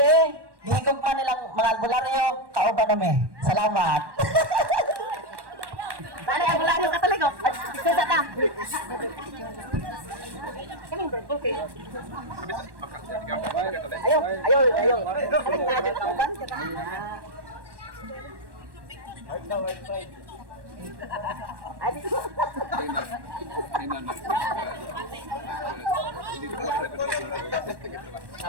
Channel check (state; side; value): late; left; 1.1 ms